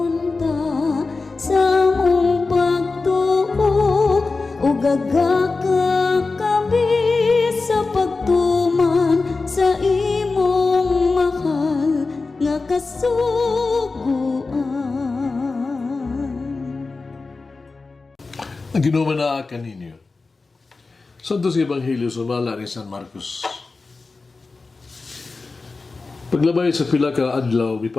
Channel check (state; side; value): quieter; right; 3.9 dB